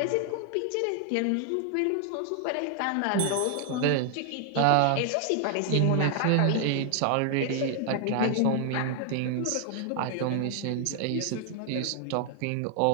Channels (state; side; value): different; both; correlation 0.00